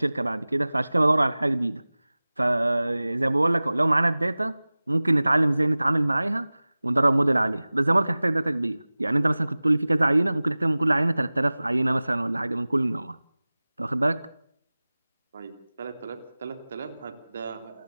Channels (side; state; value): both; inverted; correlation -0.99